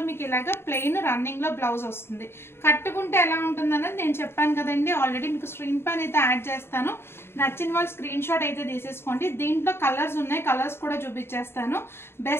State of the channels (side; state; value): right; late; 0.11 ms